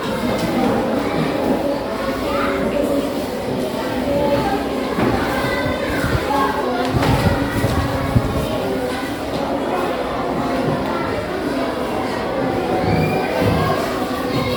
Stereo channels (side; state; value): both; identical; correlation 1.00